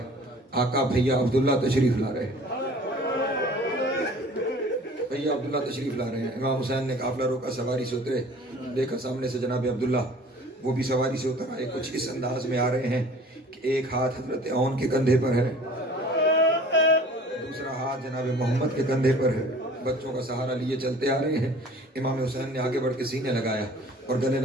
آقا بھیا عبداللہ تشریف لا رہے ہیں، بھیا عبداللہ تشریف لا رہے ہیں۔ امام حسین نے قافلہ روکا، سواری سے اترے، دیکھا سامنے سے جناب عبداللہ، وہ بھی سواری سے اتر آئے، کچھ اس انداز میں آ رہے ہیں کہ ایک ہاتھ حضرت عون کے کندھے پر ہے جناب محمد کے کندھے پر ہے، بچوں کا سہارا لیے چلتے آ رہے ہیں۔ امام حسین نے آگے بڑھ کے سینے لگایا اور گلے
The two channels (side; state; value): both; normal; correlation 0.48